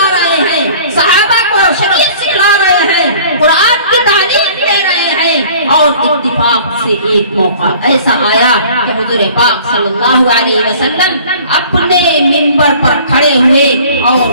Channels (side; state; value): both; inverted; correlation -0.49